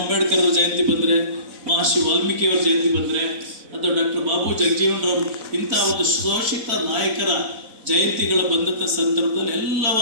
ಅವರ ಜಯಂತಿ ಬಂದರೆ, ಮಹರ್ಷಿ ವಾಲ್ಮೀಕಿಯವರ ಜಯಂತಿ ಬಂದರೆ, ಅಥವಾ ಡಾಕ್ಟರ್ ಬಾಬು ಜಗಜೀವನರಾವ್ ಇಂಥ ಒಂದು ಶೋಷಿತ ನಾಯಕರ ಜಯಂತಿಗಳ ಬಂದಂಥ ಸಂದರ್ಭದಲ್ಲಿ ಎಲ್ಲವ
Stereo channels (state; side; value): late; left; 4.0 ms